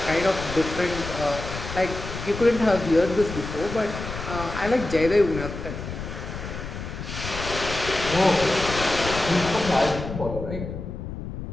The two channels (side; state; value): left; noise; rumble, 8 dB below the sound